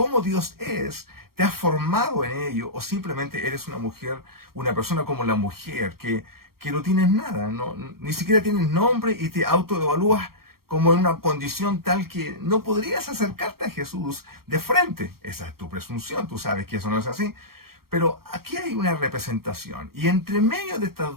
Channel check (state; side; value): late; left; 0.94 ms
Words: Dios es? ¿Te has formado en ello? ¿O simplemente eres una mujer, una persona como la mujer, que no tienes nada, ¿no? Ni siquiera tienes nombre y te autoevalúas como en una condición tal que no podrías acercarte a Jesús de frente? Esa es tu presunción, tú sabes que eso no es así. Pero aquí hay una representación y entre medio de